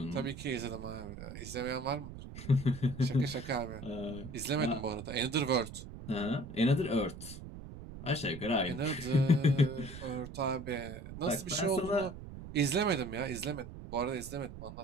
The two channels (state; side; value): noise; right; rumble, 12 dB below the sound